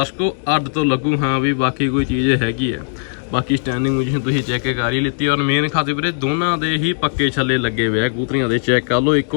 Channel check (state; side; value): silent; right; 67 dB below the other